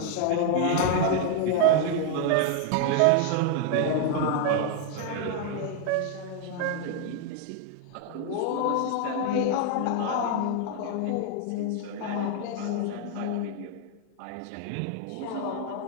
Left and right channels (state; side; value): different; both; correlation 0.00